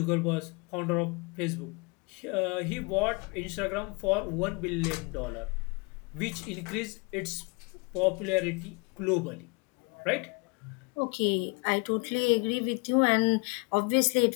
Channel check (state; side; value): quieter; right; 29.9 dB